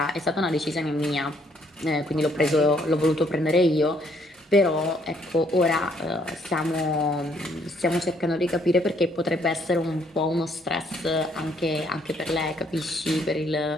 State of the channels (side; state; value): both; normal; correlation 0.68